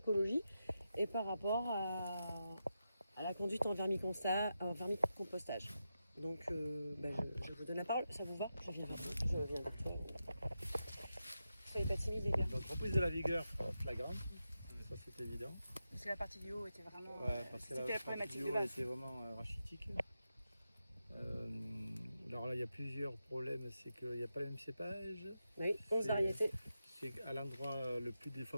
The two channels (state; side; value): inverted; both; correlation -0.88